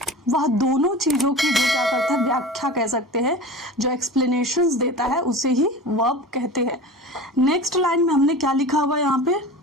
वह दोनों चीज़ों की जो क्या करता है, व्याख्या कह सकते हैं, जो एक्सप्लेनेशंस देता है, उसे ही वर्ब कहते हैं। नेक्स्ट लाइन में हमने क्या लिखा हुआ है यहाँ पे?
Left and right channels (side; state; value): both; normal; correlation 0.34